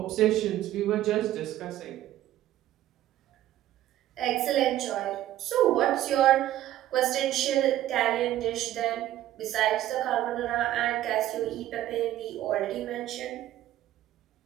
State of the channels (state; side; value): quieter; left; 13.3 dB